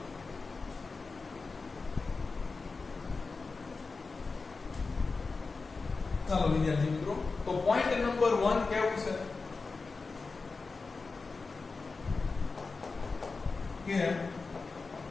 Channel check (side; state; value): right; quieter; 4.2 dB